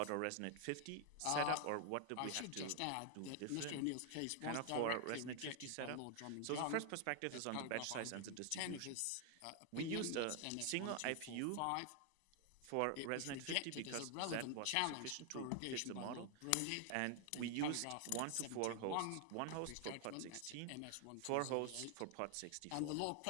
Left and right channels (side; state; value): both; different; correlation 0.00